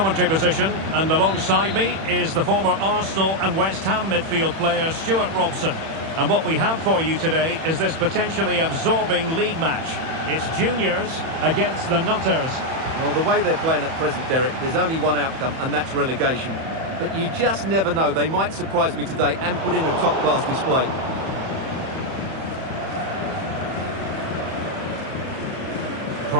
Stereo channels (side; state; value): left; late; 31 ms